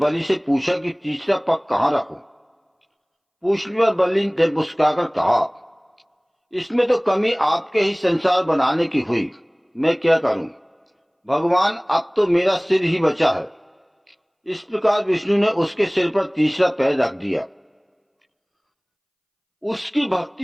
से पूछा कि तीसरा पग कहाँ रखूं। पूछने पर बलि ने मुस्कुराकर कहा, इसमें तो कमी आपके ही संसार बनाने की हुई, मैं क्या करूं भगवान, अब तो मेरा सिर ही बचा है। इस प्रकार विष्णु ने उसके सिर पर तीसरा पैर रख दिया। उसकी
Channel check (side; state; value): both; identical; correlation 1.00